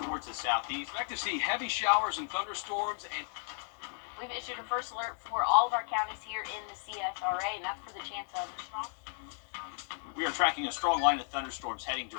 towards the southeast. Expect to see heavy showers and thunderstorms and We've issued a first alert for all of our counties here in the CSRA, and that's for the chance of strong. We are tracking a strong line of thunderstorms heading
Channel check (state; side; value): silent; right; 55 dB below the other